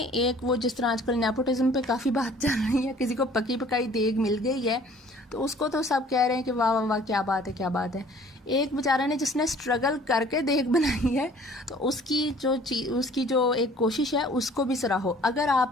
एक वो जिस तरह आजकल नेपोटिज्म पे काफ़ी बात चल रही है, किसी को पकी पकाई देग मिल गई है तो उसको तो सब कह रहे हैं कि वाह वाह वाह क्या बात है, क्या बात है। एक बेचारा ने जिसने स्ट्रगल करके देग बनाई है तो उसकी जो एक कोशिश है उसको भी सराहो। अगर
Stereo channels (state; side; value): normal; both; correlation 0.53